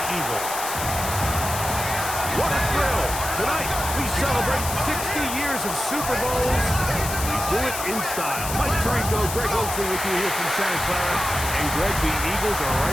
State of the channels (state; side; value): noise; left; hiss, 6 dB below the sound